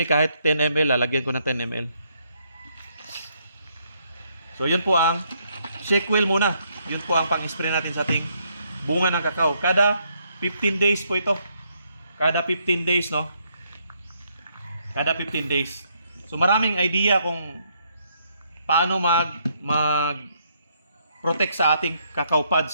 kahit 10 ml, lalagyan ko ng 10 ml. So yun po ang shake wheel muna. Yun po ang pang-spray natin sa ating bunga ng kakao. Kada 15 days po ito. Kada 15 days, no? Kada 15 days. So maraming idea kung paano mag-protect sa ating cacao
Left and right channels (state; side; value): inverted; both; correlation -0.73